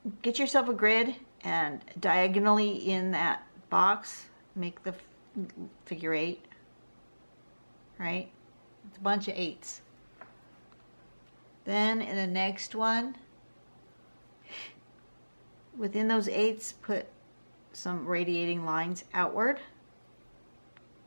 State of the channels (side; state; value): both; inverted; correlation -1.00